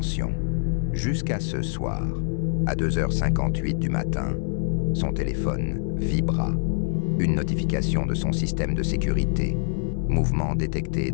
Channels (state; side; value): silent; right; 61 dB below the other